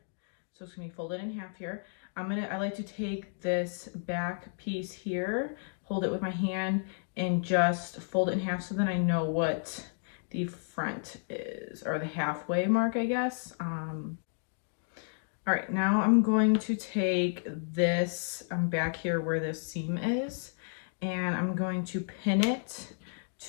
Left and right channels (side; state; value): right; silent; digital silence